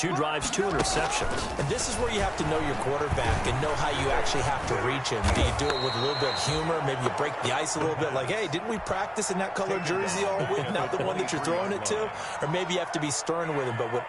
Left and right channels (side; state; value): both; identical; correlation 1.00